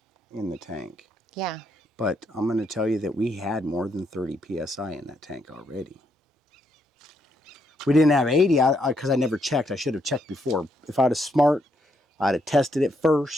in the tank. Yeah. But I'm going to tell you that we had more than 30 PSI in that tank already. We didn't have 80 because I never checked. I should have checked before. If I was smart, I'd have tested it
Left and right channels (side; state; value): both; normal; correlation 0.76